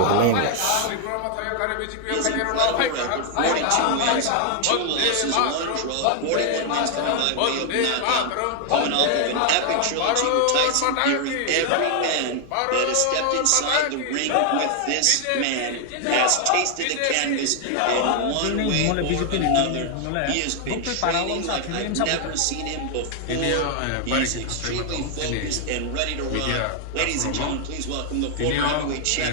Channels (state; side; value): different; both; correlation 0.00